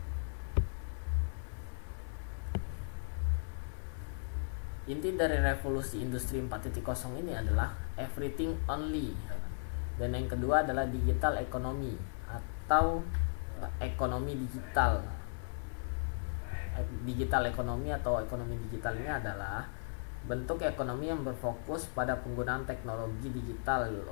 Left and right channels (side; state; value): right; silent; digital silence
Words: Inti dari revolusi industri 4.0 ini adalah everything only. Dan yang kedua adalah digital economy atau ekonomi digital. Digital ekonomi atau ekonomi digital ini adalah bentuk ekonomi yang berfokus pada penggunaan teknologi digital